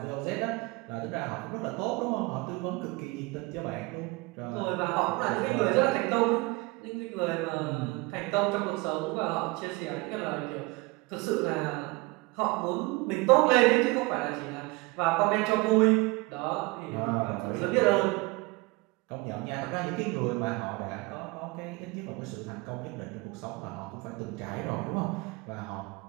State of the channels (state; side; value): quieter; left; 24.5 dB